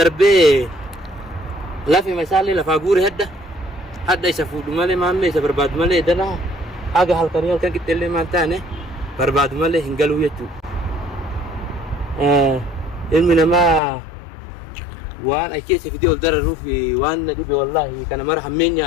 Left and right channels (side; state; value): right; drops out; at 13.8 s